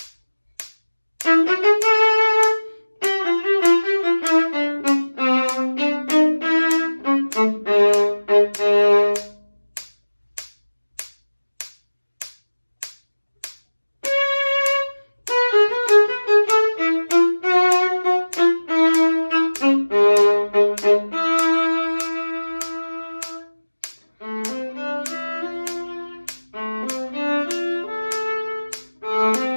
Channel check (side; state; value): both; inverted; correlation -1.00